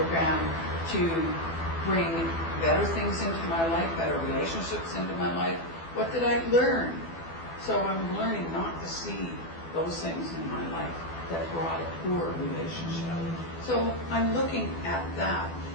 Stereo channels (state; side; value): late; right; 12 ms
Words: to bring better things into my life, better relationships into my life. What did I learn? So I'm learning not to see those things in my life that brought a poor relationship. So I'm looking at that.